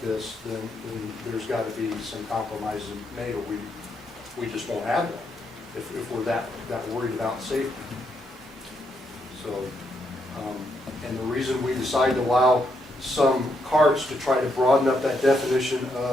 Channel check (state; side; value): normal; both; correlation 0.78